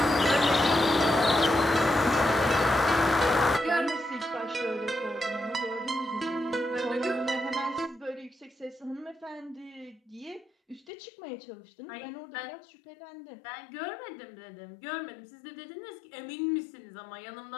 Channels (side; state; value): right; drops out; at 10.9 s